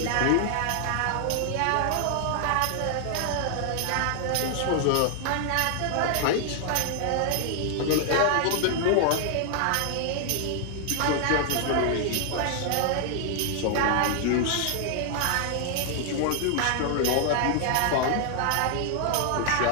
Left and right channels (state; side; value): different; both; correlation 0.00